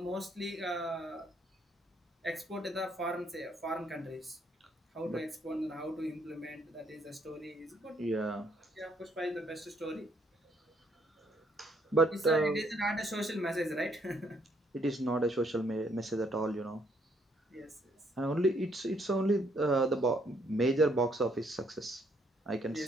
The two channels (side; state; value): both; normal; correlation 0.69